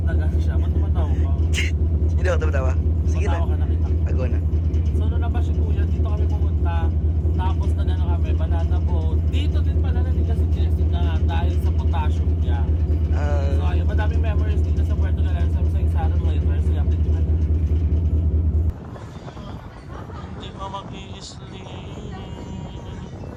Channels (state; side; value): identical; both; correlation 1.00